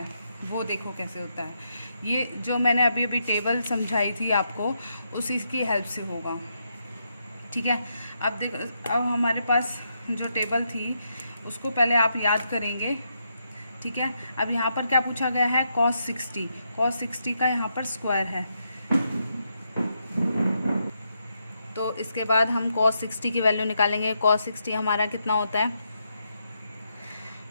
वो देखो कैसे होता है। ये जो मैंने अभी टेबल समझाई थी आपको, उसी की हेल्प से होगा, ठीक है। अब देखो, अब हमारे पास जो टेबल थी उसको पहले आप याद करेंगे, ठीक है। अब यहाँ पर क्या पूछा गया है cos 60 का यहाँ पर स्क्वायर है, तो इसके बाद हम cos 60 की वैल्यू निकालेंगे। cos 60 हमारा कितना होता है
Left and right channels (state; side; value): inverted; both; correlation -0.81